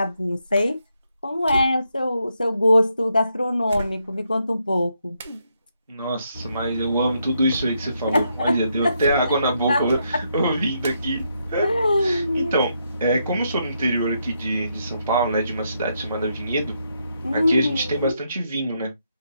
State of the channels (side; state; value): both; inverted; correlation -0.79